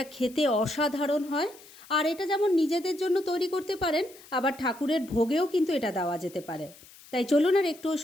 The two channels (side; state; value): left; noise; hiss, 22 dB below the sound